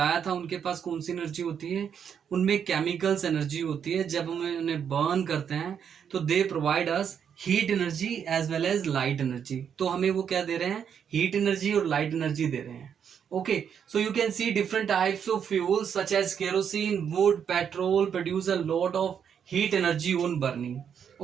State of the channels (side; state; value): left; quieter; 7.9 dB